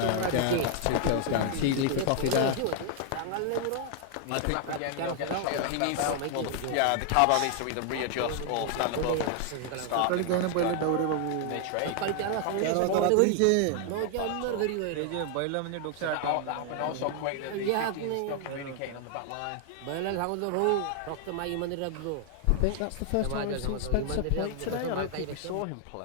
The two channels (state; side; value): different; both; correlation 0.00